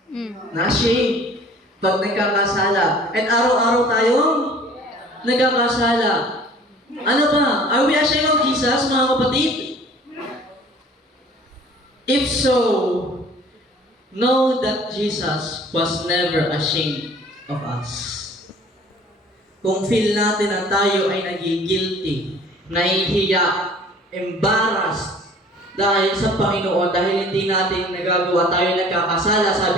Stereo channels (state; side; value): normal; both; correlation 0.50